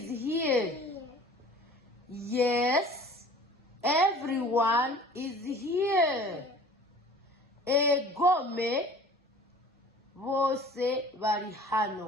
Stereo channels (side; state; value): both; normal; correlation 0.46